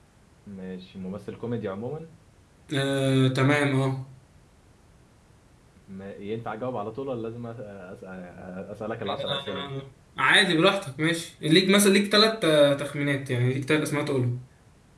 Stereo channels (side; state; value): both; identical; correlation 1.00